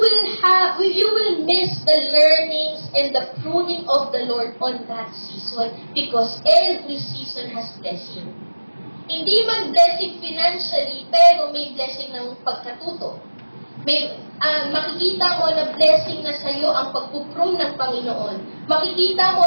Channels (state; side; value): inverted; both; correlation -1.00